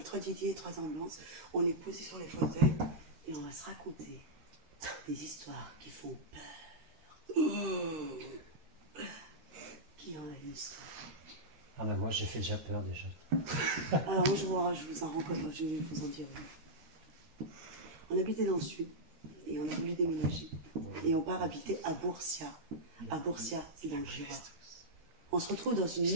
3 Didier, 3 ambulances. On est posé sur les fauteuils et on va se raconter des histoires qui font peur. Qui en a une histoire? Ah ben moi j'ai fait déjà peur déjà. Alors moi je vous en rencontre, je vais vous en dire. On habitait dans le sud et on a voulu déménager. Et on part habiter à Bourcia. À Bourcia, c'est dans le Jura. On se retrouve dans une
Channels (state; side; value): late; left; 13 ms